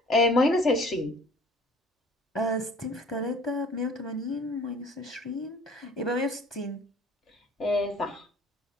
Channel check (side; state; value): both; normal; correlation 0.51